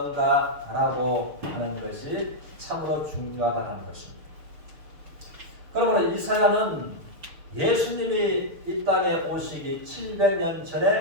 하는 것이 참으로 중요하다는 것입니다. 그러므로 이사야는 예수님이 이 땅에 오시기 700년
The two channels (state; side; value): late; left; 6.5 ms